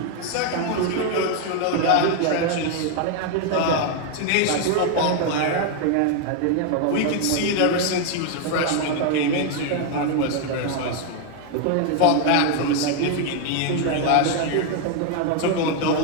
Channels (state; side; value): different; both; correlation 0.00